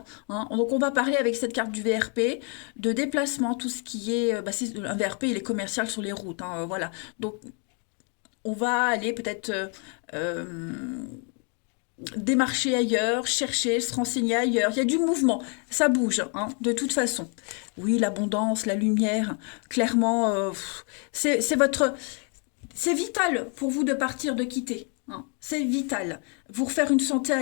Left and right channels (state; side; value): quieter; right; 38.7 dB